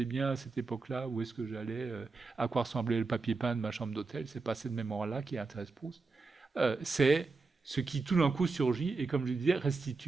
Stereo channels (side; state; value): left; quieter; 4.0 dB